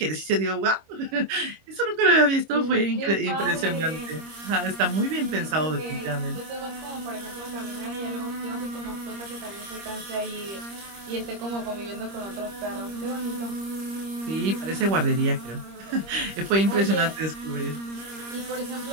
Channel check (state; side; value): late; left; 25 ms